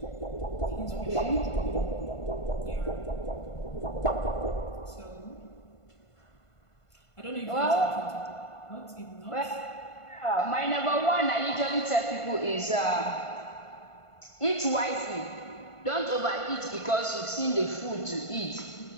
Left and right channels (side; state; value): right; late; 1.5 ms